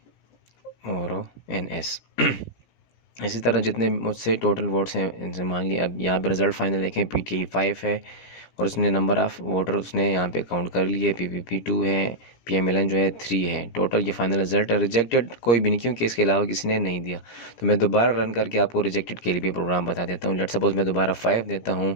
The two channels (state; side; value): late; right; 17 ms